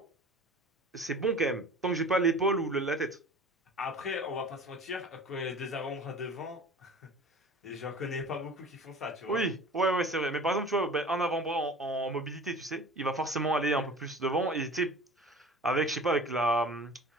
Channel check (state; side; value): normal; both; correlation 0.41